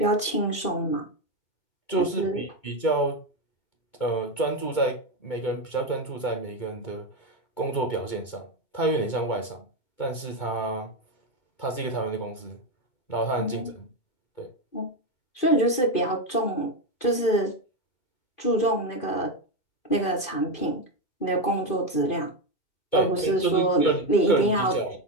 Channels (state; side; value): late; right; 2.5 ms